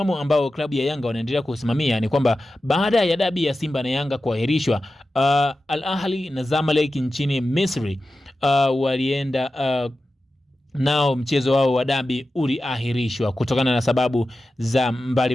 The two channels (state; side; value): normal; both; correlation 0.93